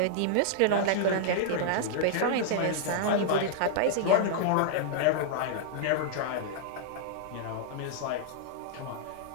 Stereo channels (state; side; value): different; both; correlation -0.01